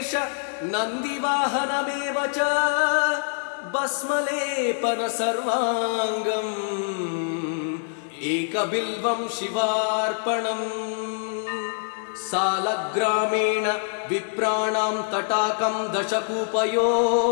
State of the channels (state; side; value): silent; right; digital silence